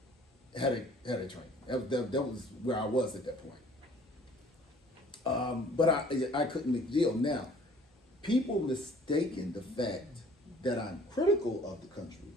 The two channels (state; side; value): normal; both; correlation 0.54